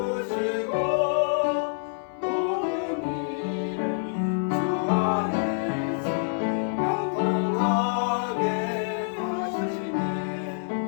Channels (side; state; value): right; silent; digital silence